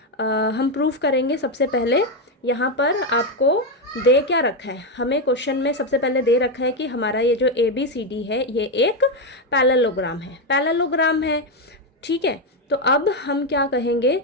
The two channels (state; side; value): normal; both; correlation 0.07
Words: हम प्रूफ करेंगे। सबसे पहले यहाँ पर आपको दे क्या रखा है, हमें क्वेश्चन में सबसे पहले दे रखा है कि हमारा ये जो ए बी सी डी है ये एक पैरेललोग्राम है। ठीक है, तो अब हम क्या कहेंगे